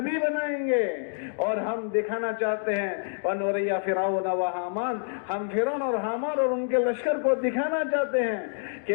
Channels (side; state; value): right; silent; digital silence